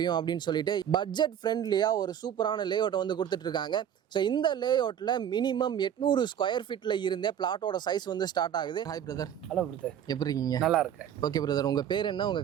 அப்படின்னு சொல்லிட்டு பட்ஜெட் ஃப்ரெண்ட்லியாக ஒரு சூப்பரான லேஅவுட்டை வந்து கொடுத்துட்டு இருக்காங்க. ஸோ இந்த லேஅவுட்டில் மினிமம் 800 ஸ்கொயர் ஃபீட்டில் இருந்தே பிளாட்டோட சைஸ் வந்து ஸ்டார்ட் ஆகுது. Hi brother. ஹலோ பிரதர், எப்படி இருக்கீங்க? நல்லா இருக்கேன். ஓகே பிரதர், உங்கள் பேர் என்ன,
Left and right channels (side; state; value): left; quieter; 9.5 dB